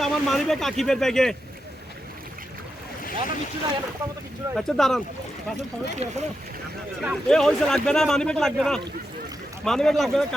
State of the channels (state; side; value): normal; both; correlation 0.86